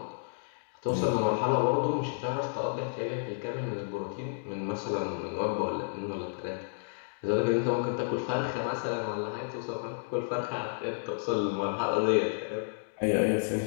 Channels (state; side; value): silent; right; digital silence